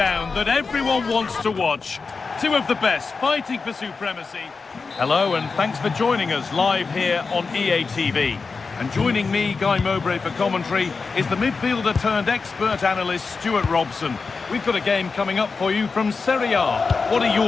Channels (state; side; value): quieter; right; 4.6 dB